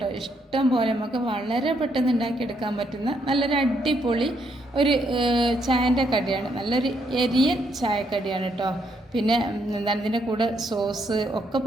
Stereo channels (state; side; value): normal; both; correlation 0.74